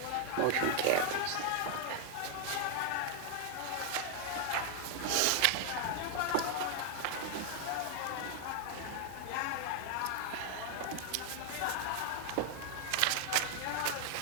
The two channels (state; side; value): different; both; correlation 0.00